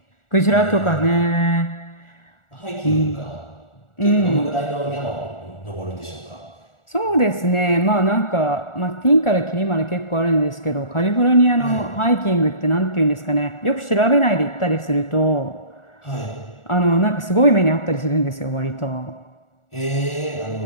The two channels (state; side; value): late; right; 1.4 ms